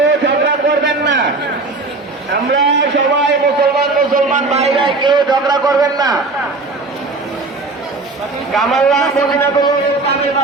ঝগড়া করবেন না। আমরা সবাই মুসলমান ভাই ভাই, কেউ ঝগড়া করবেন না। কামাল্লা মদিনাতুল ইসলামের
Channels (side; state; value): left; quieter; 3.5 dB